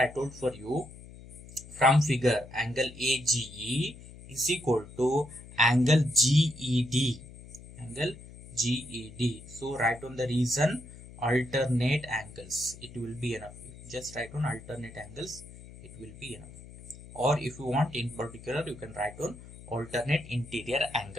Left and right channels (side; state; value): left; noise; hum, 17 dB below the sound